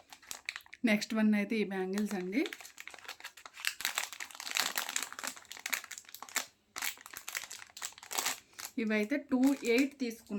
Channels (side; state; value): both; identical; correlation 1.00